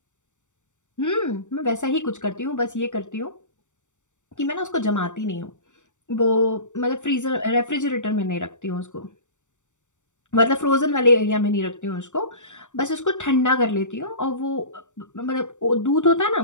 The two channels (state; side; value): late; right; 0.85 ms